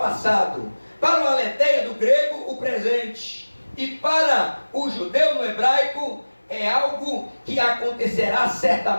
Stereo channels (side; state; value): both; inverted; correlation -1.00